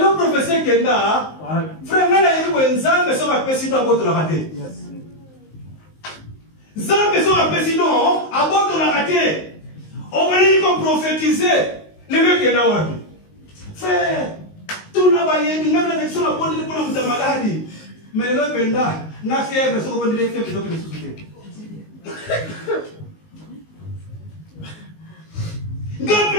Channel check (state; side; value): late; right; 19 ms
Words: autres prophéties qui sont là, frère, il y a des gens qui sont appelés dans votre raté. Les gens qui sont appelés à votre raté. On va dire qu'on prophétiser. Les mecs qui sont là, frère, tout le monde va y aller. Même les gens qui sont là pour la maladie. Mais les autres, ils ont fièvre, ils ont des fièvres, ils ont des soucis.